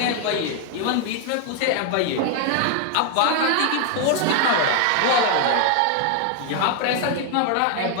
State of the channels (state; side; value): different; both; correlation 0.01